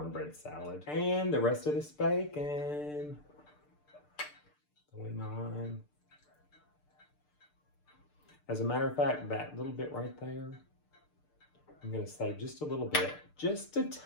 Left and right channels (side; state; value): right; late; 6.7 ms